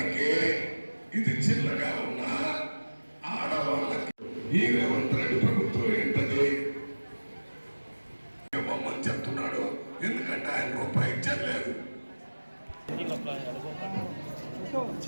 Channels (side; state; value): both; inverted; correlation -1.00